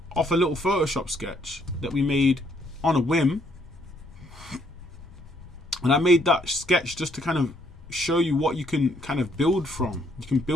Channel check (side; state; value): left; noise; rumble, 19 dB below the sound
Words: off a little Photoshop sketch that we made on a whim, and I made that sketch just to kind of show you what you can kind of build from. You can